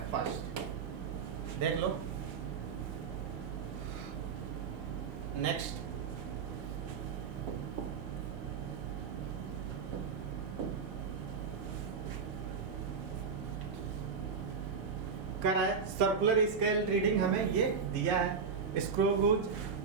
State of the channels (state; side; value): quieter; left; 5.6 dB